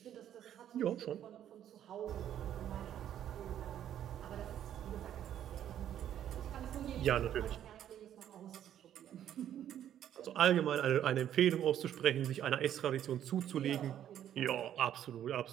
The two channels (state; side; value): quieter; left; 10.6 dB